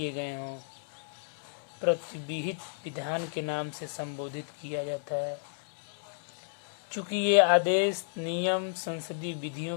गए हों, प्रतिविहित विधान के नाम से संबोधित किया जाता है। चूंकि ये आदेश, नियम संसदीय विधियों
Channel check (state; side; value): silent; right; 56 dB below the other